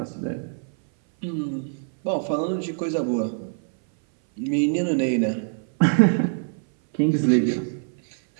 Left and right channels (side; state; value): left; silent; 60 dB below the other